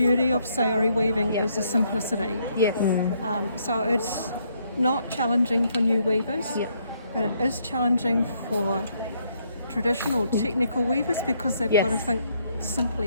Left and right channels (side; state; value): both; inverted; correlation -0.71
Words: of sari weaving, is the simplicity. Yes. So it's not challenging for new weavers, Yeah. but it is challenging for traditional technical weavers, because they've got to Yes. think